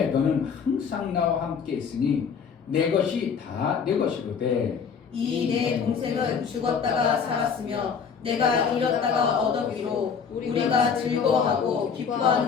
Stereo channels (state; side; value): quieter; right; 6.4 dB